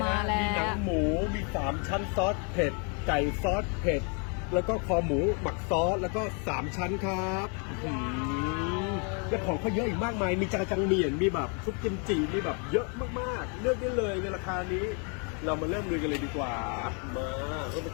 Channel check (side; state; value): right; quieter; 37.5 dB